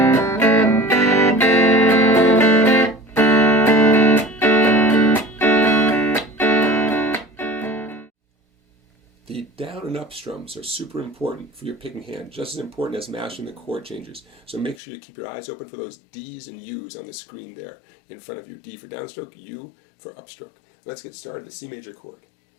The down and up strums are super important for your picking hand, just as important as mastering the chord changes. So make sure you keep your eyes open for those D's and U's on the screen there in front of you. D for downstroke, U for upstroke. Let's get started. The C major chord.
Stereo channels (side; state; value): right; drops out; at 14.8 s